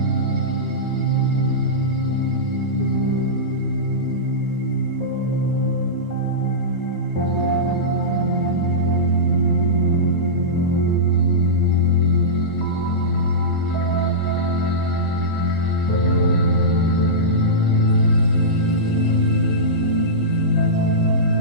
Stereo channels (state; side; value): normal; both; correlation -0.15